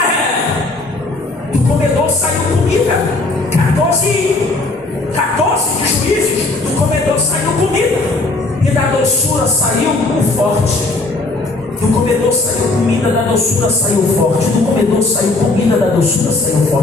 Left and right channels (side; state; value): right; quieter; 3.2 dB